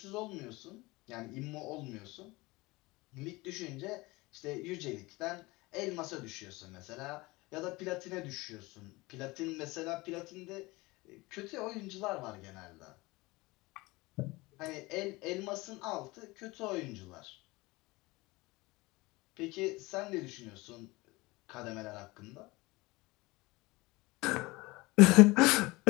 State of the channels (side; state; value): right; quieter; 22.3 dB